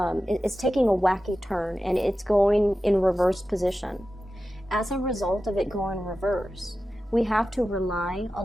taking a wacky turn, and it's going in reverse position. As a result of it going reverse, we have to rely a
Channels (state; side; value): normal; both; correlation 0.93